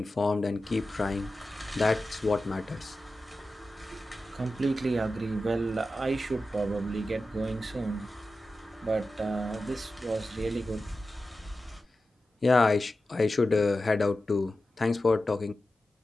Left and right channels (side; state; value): both; normal; correlation 0.93